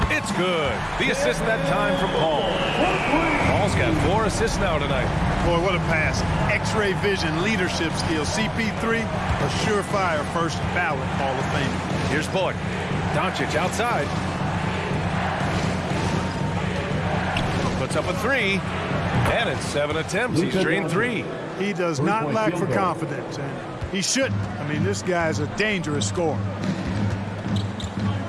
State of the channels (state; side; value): identical; both; correlation 1.00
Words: It's good. The assist that time from Paul. Paul's got 4 assists now tonight. Boy, what a pass. X-ray vision, leadership skills. CP3, a surefire first ballot Hall of Fame. Here's Bullock. Doncic outside. Puts up a 3. And it's 7 attempts. He's drained 3. He does not lack for confidence, and he shouldn't. I mean, this guy's a dangerous scorer.